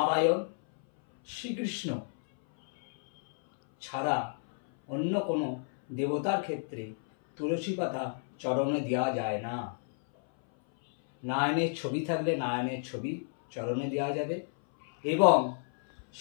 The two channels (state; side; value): silent; right; 57 dB below the other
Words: শ্রীকৃষ্ণ ছাড়া অন্য কোনো দেবতার ক্ষেত্রে তুলসী পাতা চরণে দেওয়া যায় না। নারায়ণের ছবি থাকলে নারায়ণের ছবি চরণে দেওয়া যাবে এবং